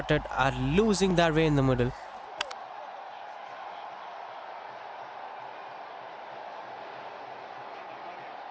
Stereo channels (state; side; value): identical; both; correlation 1.00